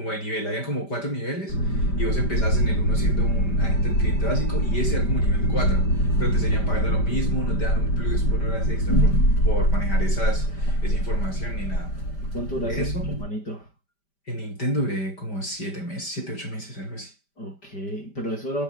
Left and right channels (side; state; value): right; late; 5.1 ms